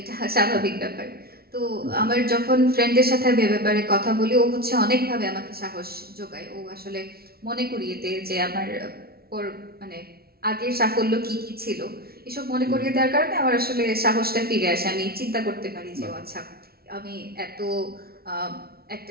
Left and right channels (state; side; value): late; left; 0.44 ms